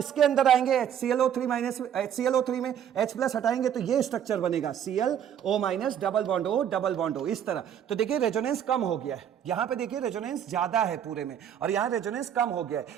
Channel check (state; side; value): quieter; left; 9.3 dB